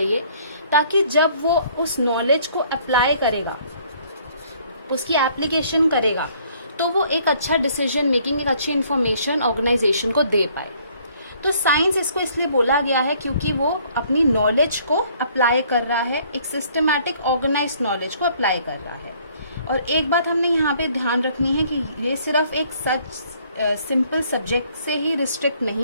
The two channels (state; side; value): inverted; both; correlation -0.61